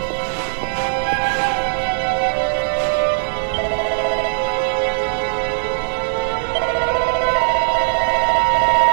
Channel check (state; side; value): silent; left; digital silence